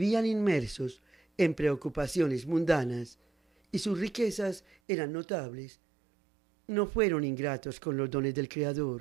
inmersos en preocupaciones mundanas y sus riquezas eran notables, no fueron ingratos con los dones del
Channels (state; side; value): drops out; left; at 4.8 s